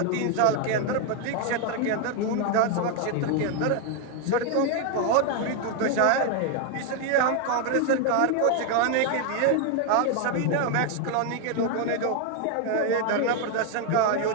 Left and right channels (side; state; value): both; different; correlation 0.01